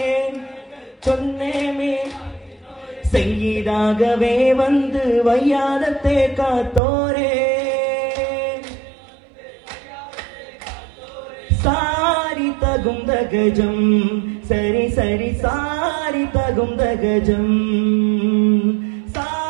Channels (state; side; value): drops out; left; at 6.8 s